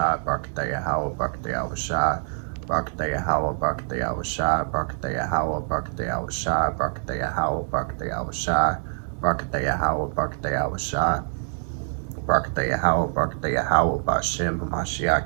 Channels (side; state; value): left; silent; digital silence